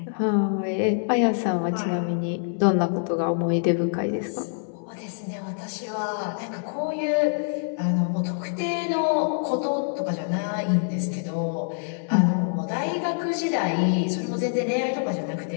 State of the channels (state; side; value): silent; right; 61 dB below the other